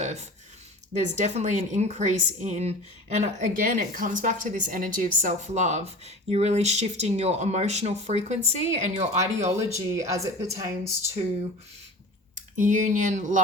There's definitely an increase in, and again, it comes back to this energy of self-love. You're really shifting your emotional frequency and your ideology as it pertains to union,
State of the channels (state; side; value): normal; both; correlation 0.37